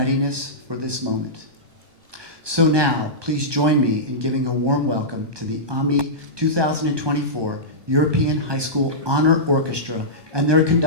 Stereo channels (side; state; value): left; late; 1.2 ms